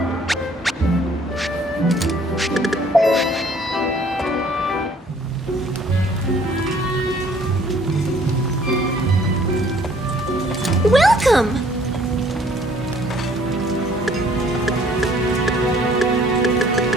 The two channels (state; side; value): normal; both; correlation 0.59